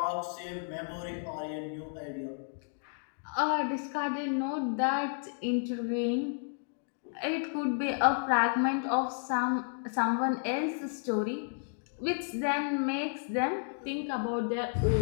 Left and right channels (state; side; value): silent; right; digital silence